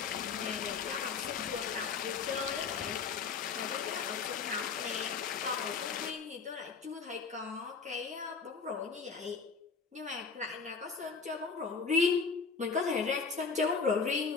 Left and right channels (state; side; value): quieter; right; 5.3 dB